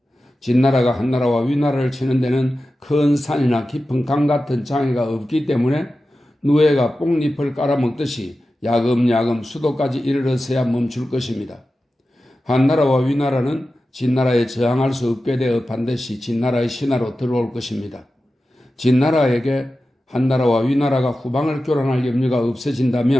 진나라가 한나라와 위나라를 치는 데는 큰 산이나 깊은 강 같은 장애가 없기 때문에 누에가 뽕잎을 깔아먹듯이 야금야금 수도까지 이르러서야 멈출 것입니다. 한나라와 위나라는 진나라에 저항할 수 없게 되어 반드시 진나라의 신하로 들어올 것입니다. 진나라에게 한나라와 위나라가 후방을 교란할 염려가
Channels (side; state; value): both; normal; correlation 0.93